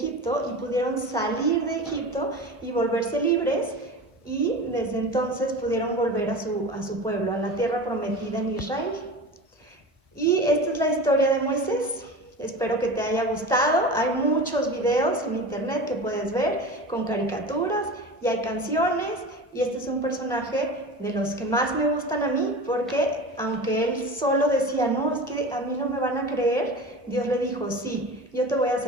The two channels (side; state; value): both; normal; correlation 0.32